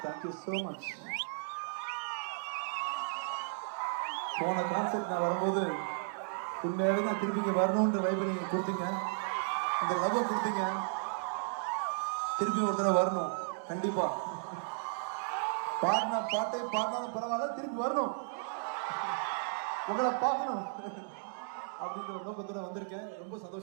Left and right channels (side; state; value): left; silent; digital silence